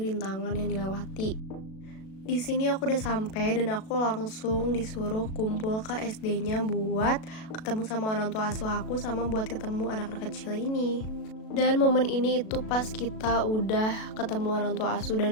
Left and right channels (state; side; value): late; right; 37 ms